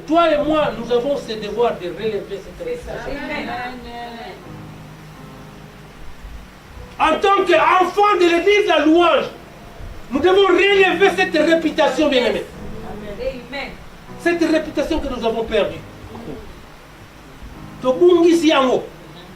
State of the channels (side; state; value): both; identical; correlation 1.00